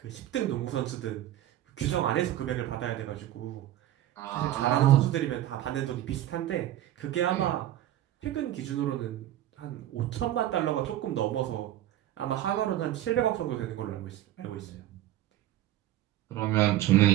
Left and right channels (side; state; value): left; quieter; 13.2 dB